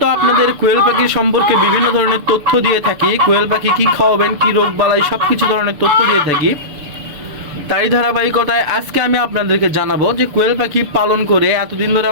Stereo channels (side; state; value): left; late; 6.9 ms